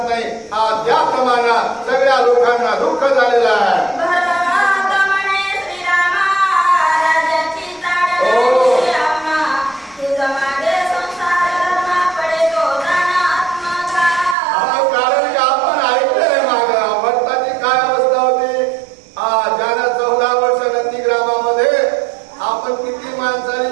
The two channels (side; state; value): left; drops out; at 14.4 s